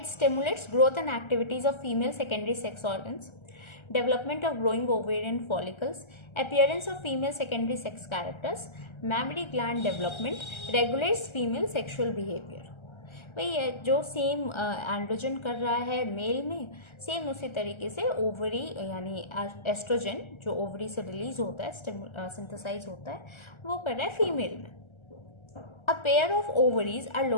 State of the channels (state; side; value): late; right; 1.3 ms